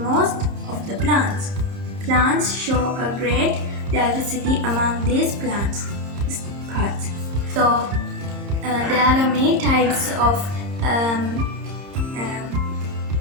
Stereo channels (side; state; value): left; late; 30 ms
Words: of the plants. Plants show a great diversity among these plants parts. So there are many types of